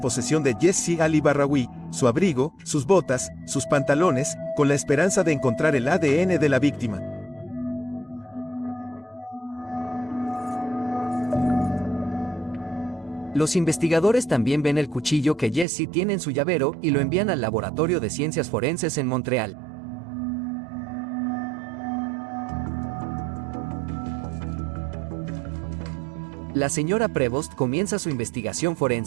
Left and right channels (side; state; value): left; drops out; at 15.7 s